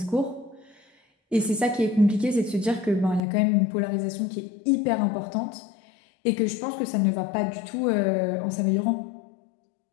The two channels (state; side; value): drops out; right; at 3.2 s